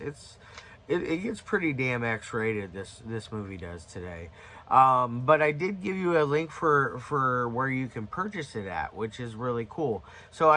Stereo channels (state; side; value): identical; both; correlation 1.00